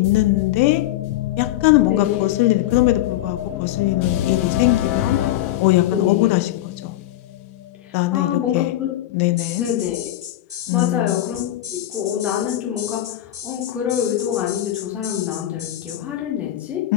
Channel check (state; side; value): quieter; right; 14.0 dB